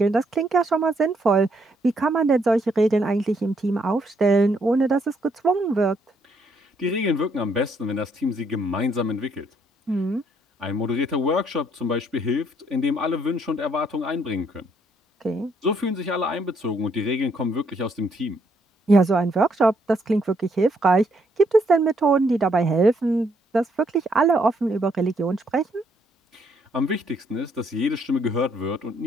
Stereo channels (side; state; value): both; normal; correlation 0.71